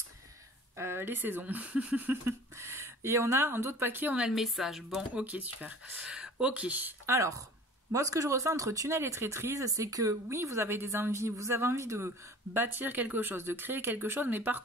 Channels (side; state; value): both; normal; correlation 0.44